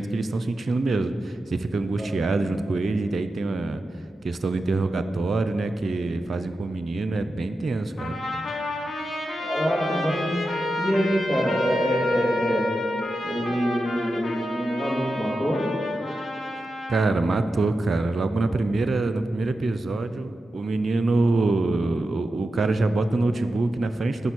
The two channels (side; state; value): both; normal; correlation 0.90